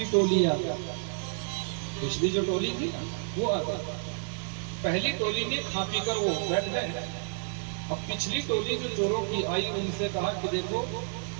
टोली आ गई। पिछली जो टोली थी वो आ गई, पहली टोली ने खा पी कर वो बैठ गए। अब पिछली टोली जो चोरों की आई, उनसे कहा कि देखो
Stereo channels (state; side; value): silent; left; 58 dB below the other